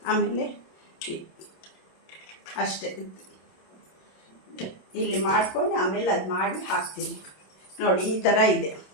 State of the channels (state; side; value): late; right; 27 ms